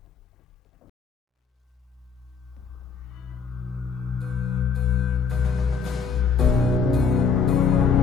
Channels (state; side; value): quieter; right; 5.7 dB